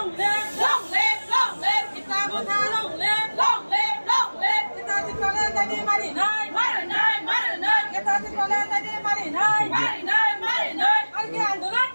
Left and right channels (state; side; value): inverted; both; correlation -1.00